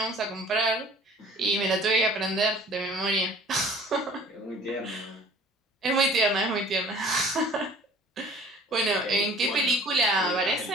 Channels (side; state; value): both; normal; correlation 0.49